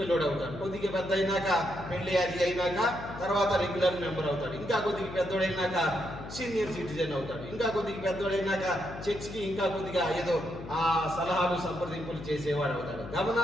అవుతాడు, కొద్దిగా పెద్ద అయినాక పెళ్లి అది అయినాక తర్వాత రెగ్యులర్ మెంబర్ అవుతాడు, ఇంకా కొద్దిగా పెద్దోడైనాక సీనియర్ సిటిజన్ అవుతాడు, ఇంకా కొద్దిగా పెద్దోడైనాక చర్చ్కి ఇంకా కొద్దిగా ఏదో సలహాలు సంప్రదింపులు చేసేవాడు అవుతాడు.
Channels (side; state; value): left; noise; hum, 12 dB below the sound